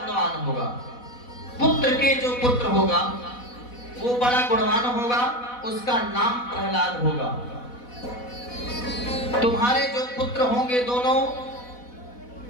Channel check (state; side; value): late; right; 4.1 ms